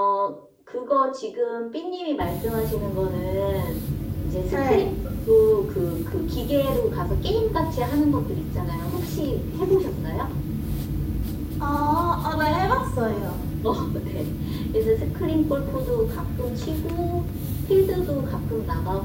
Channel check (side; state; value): both; identical; correlation 1.00